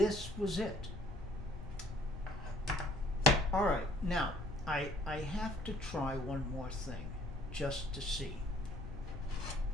was it. All right, now I have to try one more thing just to see.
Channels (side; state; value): both; normal; correlation 0.59